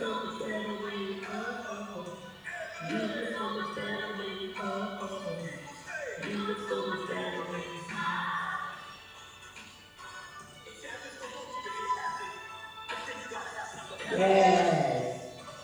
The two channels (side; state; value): both; identical; correlation 1.00